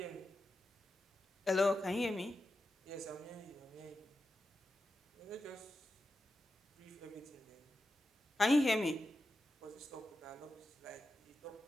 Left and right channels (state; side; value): normal; both; correlation 0.90